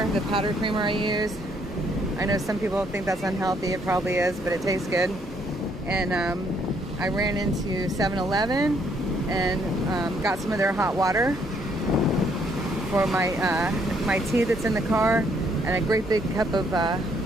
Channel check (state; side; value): normal; both; correlation 0.69